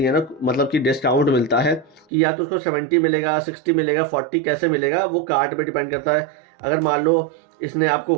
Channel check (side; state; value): left; drops out; at 2.1 s